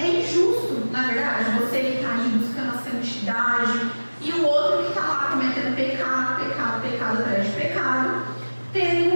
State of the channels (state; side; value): inverted; both; correlation -1.00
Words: injusto, na verdade, você que está aí buscando a santidade e o outro que está lá cometendo pecado atrás de pecado, terem